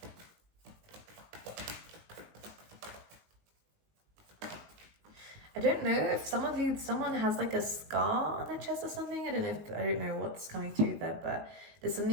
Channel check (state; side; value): late; left; 19 ms